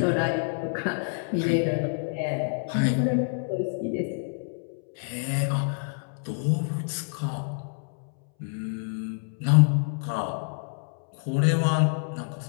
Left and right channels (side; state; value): right; silent; 60 dB below the other